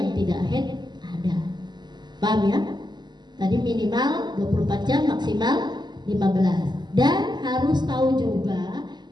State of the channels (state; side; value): late; left; 0.21 ms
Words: tidak head ada. Paham ya? Tadi minimal 24 jam, maksimal 15. Dan harus tahu juga